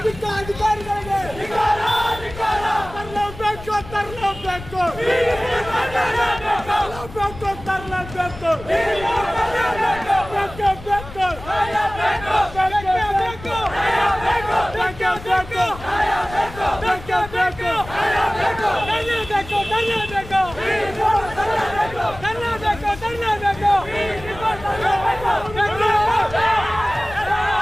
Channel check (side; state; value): left; noise; rumble, 15 dB below the sound